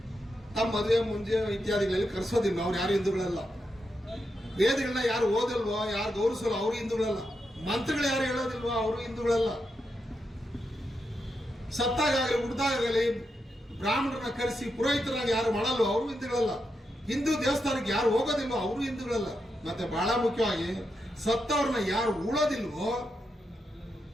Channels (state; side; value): normal; both; correlation 0.85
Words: ತಮ್ಮ ಮದುವೆ ಮುಂಜೆ ಇತ್ಯಾದಿಗಳಲ್ಲಿ ಕರೆಸೋದಿಲ್ಲ, ಅವ್ರು ಯಾರು ಹಿಂದೂಗಳಲ್ಲ. ವೇದಗಳನ್ನ ಯಾರು ಓದಲ್ವೋ, ಯಾರು ಗೌರವಿಸಲ್ಲ, ಅವರು ಹಿಂದೂಗಳಲ್ಲ. ಮಂತ್ರಗಳು ಯಾರು ಹೇಳೋದಿಲ್ವೋ, ಅವರು ಹಿಂದೂಗಳಲ್ಲ. ಸತ್ತಾಗಲಿ ಹುಡ್ದಾಗಲಿ ಬ್ರಾಹ್ಮಣರನ್ನ ಕರೆಸಿ ಪುರೋಹಿತರಾಗಿ ಯಾರು ಮಾಡಲ್ವೋ, ಅವರು ಹಿಂದೂಗಳಲ್ಲ. ಹಿಂದೂ ದೇವಸ್ಥಾನಕ್ಕೆ ಯಾರು ಹೋಗೋದಿಲ್ವೋ, ಅವರು ಹಿಂದೂಗಳಲ್ಲ. ಮತ್ತೆ ಬಹಳ ಮುಖ್ಯವಾಗಿ ಸತ್ತವ್ರನ್ನ ಯಾರು ಉಳೋದಿಲ್ವೋ